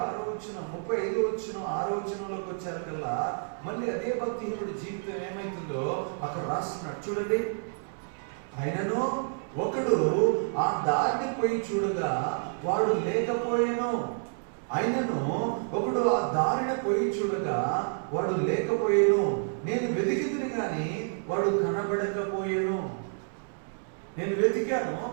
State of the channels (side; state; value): left; silent; 58 dB below the other